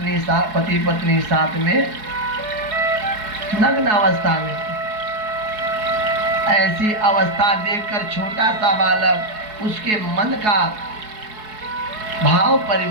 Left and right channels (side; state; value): left; late; 4.7 ms